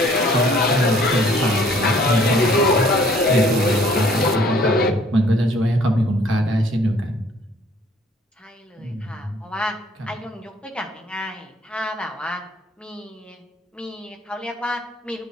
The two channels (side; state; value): both; normal; correlation 0.58